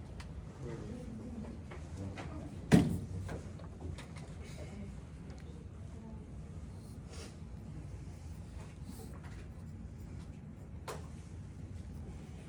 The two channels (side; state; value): both; identical; correlation 1.00